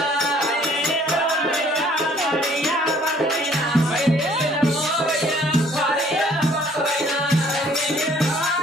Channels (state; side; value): normal; both; correlation 0.58